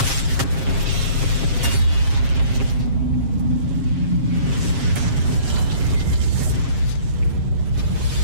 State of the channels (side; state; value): left; late; 7.4 ms